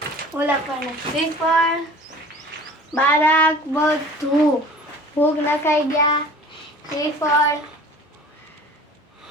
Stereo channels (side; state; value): both; normal; correlation 0.44